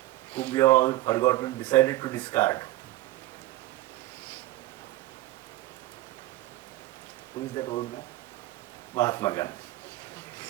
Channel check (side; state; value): left; quieter; 17.0 dB